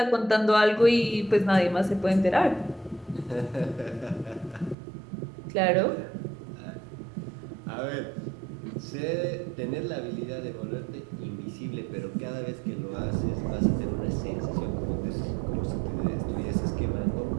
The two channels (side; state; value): left; drops out; at 4.8 s